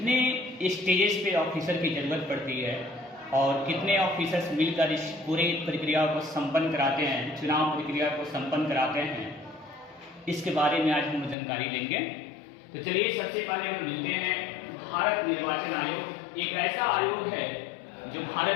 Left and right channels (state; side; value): drops out; right; at 11.4 s